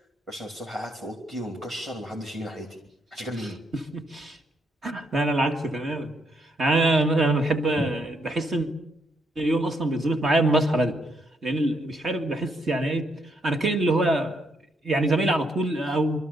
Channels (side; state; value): both; normal; correlation 0.75